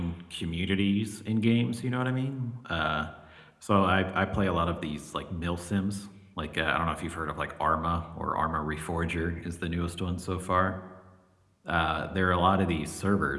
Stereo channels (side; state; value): both; identical; correlation 1.00